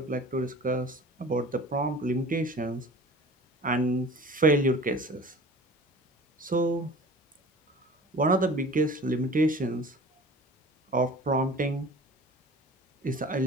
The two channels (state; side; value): normal; both; correlation 0.42